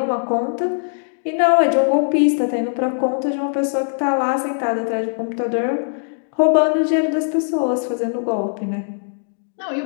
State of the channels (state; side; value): silent; right; digital silence